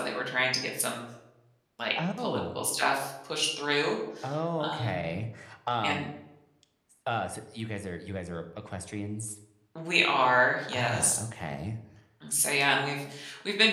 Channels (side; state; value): both; identical; correlation 1.00